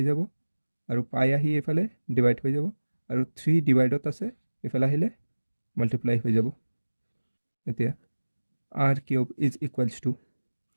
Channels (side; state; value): both; inverted; correlation -1.00